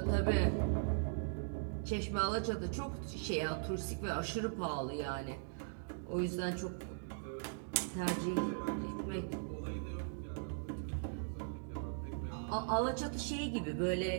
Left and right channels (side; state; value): left; silent; digital silence